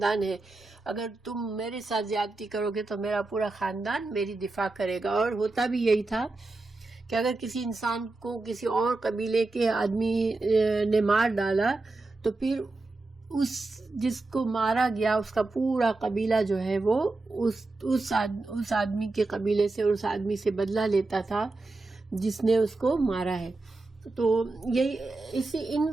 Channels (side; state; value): left; quieter; 3.3 dB